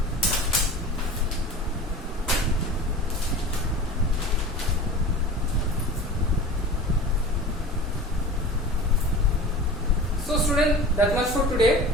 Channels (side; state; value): both; normal; correlation 0.36